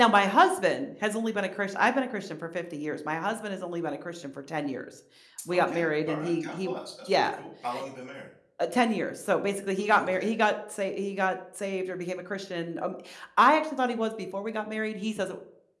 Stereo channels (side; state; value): both; identical; correlation 1.00